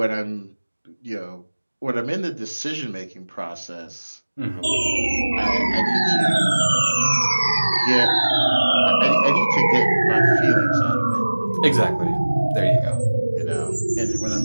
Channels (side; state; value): both; inverted; correlation -1.00